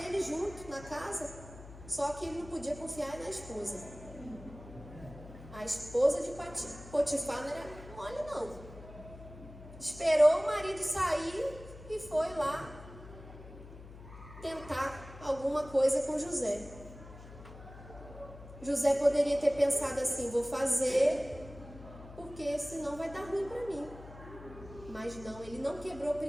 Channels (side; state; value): left; noise; hum, 16 dB below the sound